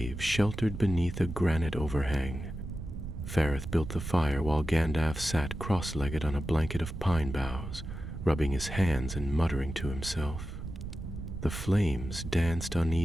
sheltered beneath a granite overhang. Fareth built the fire while Gandalf sat cross-legged on a blanket of pine boughs, rubbing his hands and muttering to himself. The flames danced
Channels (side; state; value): right; noise; rumble, 8 dB below the sound